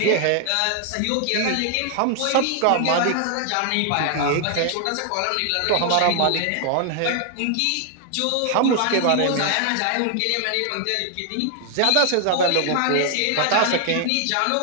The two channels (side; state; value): both; different; correlation 0.00